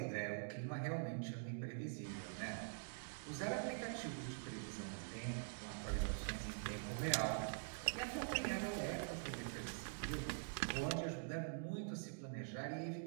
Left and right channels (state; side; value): silent; left; digital silence